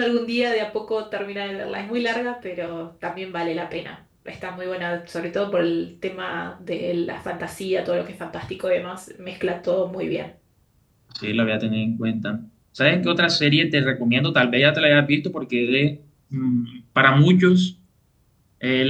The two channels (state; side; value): identical; both; correlation 1.00